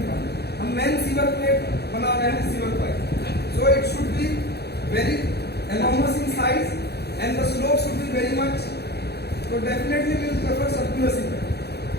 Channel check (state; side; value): late; right; 0.48 ms